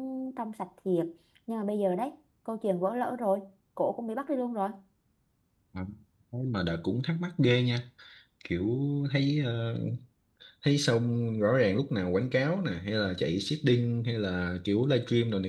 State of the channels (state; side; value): identical; both; correlation 1.00